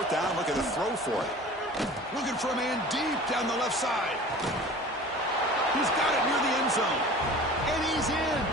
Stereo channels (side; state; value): both; normal; correlation 0.41